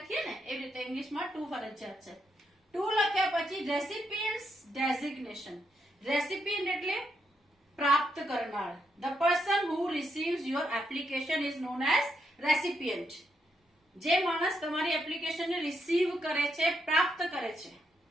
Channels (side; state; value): both; normal; correlation 0.79